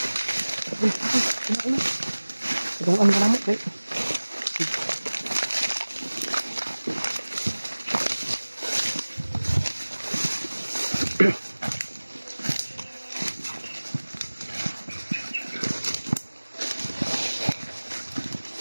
Itong ano ka naman, right?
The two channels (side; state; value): both; inverted; correlation -1.00